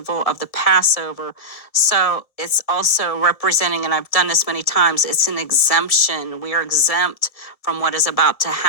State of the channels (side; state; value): right; late; 1.6 ms